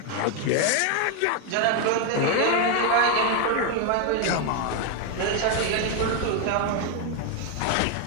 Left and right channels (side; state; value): both; different; correlation 0.01